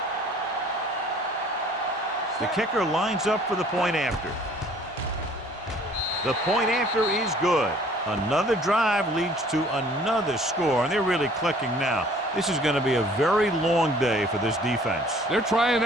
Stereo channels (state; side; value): normal; both; correlation 0.55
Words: The kicker lines up for the point after. The point after is good. Another drive leads to another score, and they're really clicking now. This is going to be a very long day for this defense. They're trying